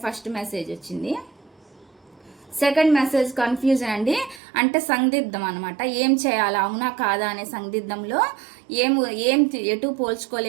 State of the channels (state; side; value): drops out; left; at 4.4 s